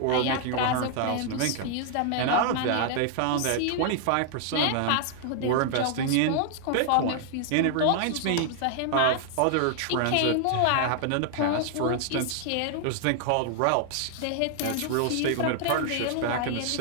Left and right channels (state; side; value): different; both; correlation 0.00